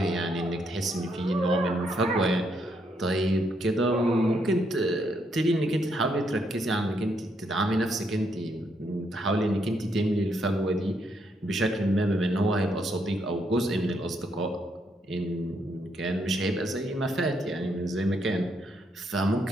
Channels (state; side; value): normal; both; correlation 0.75